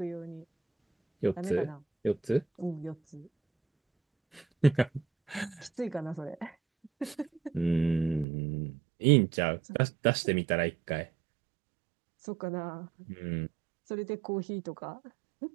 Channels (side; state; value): left; drops out; at 8.2 s